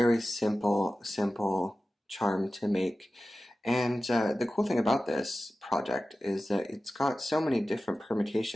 simple charm to make. And the cool thing about this project is that it's got so many different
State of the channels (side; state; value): both; normal; correlation 0.95